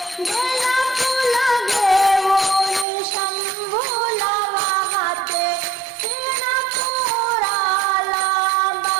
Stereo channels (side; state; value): left; drops out; at 2.9 s